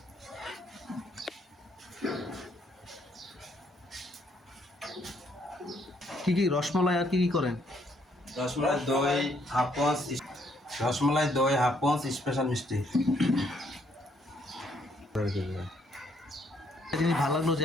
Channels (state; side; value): normal; both; correlation 0.69